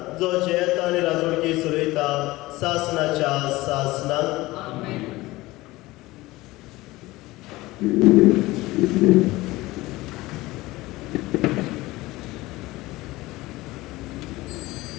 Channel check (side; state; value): right; quieter; 19.4 dB